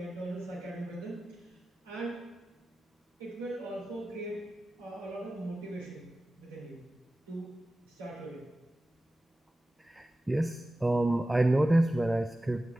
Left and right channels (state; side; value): normal; both; correlation 0.95